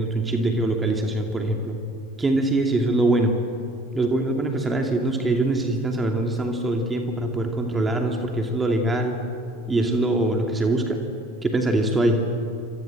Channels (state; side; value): normal; both; correlation 0.56